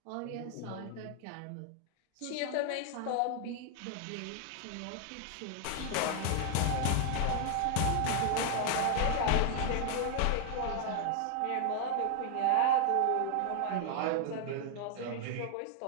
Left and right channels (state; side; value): different; both; correlation 0.00